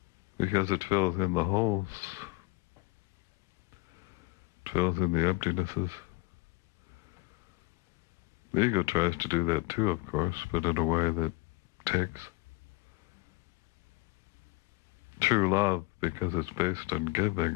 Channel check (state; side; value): quieter; right; 22.3 dB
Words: Because it fills in the holes. It fills in the emptinesses. The ego tries to do that too, of course, but in a way that takes. True love, because it's based on